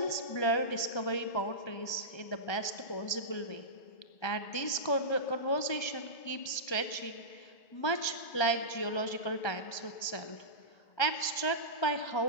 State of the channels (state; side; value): late; right; 1.3 ms